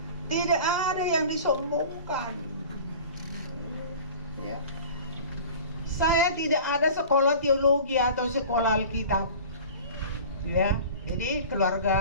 Tidak ada yang disombongkan. Ya. Saya tidak ada sekolah teologi atau sekolah Alkitab. Ya, jadi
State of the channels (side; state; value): both; inverted; correlation -0.40